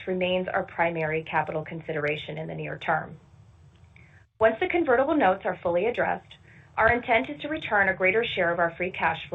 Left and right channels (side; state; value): both; identical; correlation 1.00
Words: remains our primary capital consideration in the near term. Once the convertible notes are fully addressed, our intent is to return a greater share of our free cash